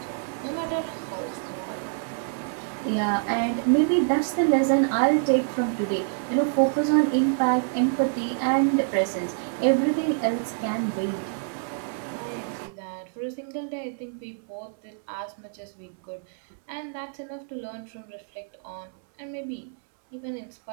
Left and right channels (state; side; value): silent; left; 60 dB below the other